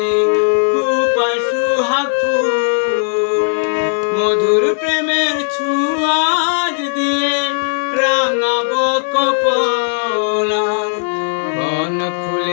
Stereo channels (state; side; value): silent; right; 69 dB below the other